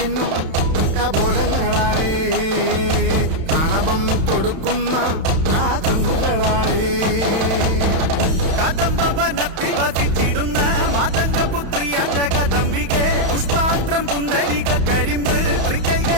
കപോലങ്ങളാണേ, കളവം തൊടുക്കുന്ന ആ കണ്ണുകളാണേ. കദംബവനത്തിൽ വസിച്ചിടുന്ന മാതംഗപുത്രി അഞ്ജകദംബികെ, പുഷ്പാത്രം പുണ്ടരിക കരിമ്പ്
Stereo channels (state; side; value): late; left; 31 ms